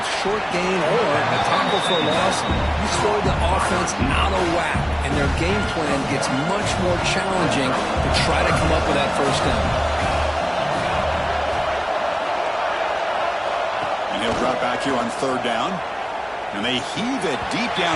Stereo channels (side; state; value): both; identical; correlation 1.00